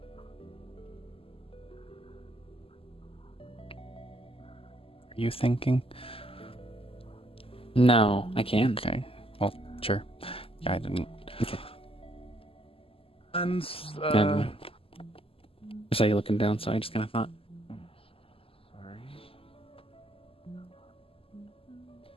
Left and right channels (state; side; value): late; right; 0.27 ms